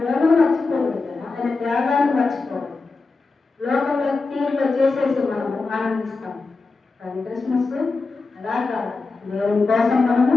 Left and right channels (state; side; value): quieter; right; 3.9 dB